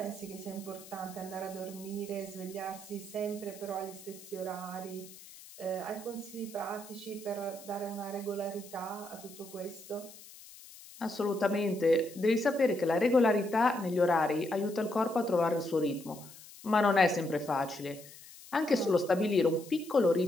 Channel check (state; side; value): noise; left; hiss, 18 dB below the sound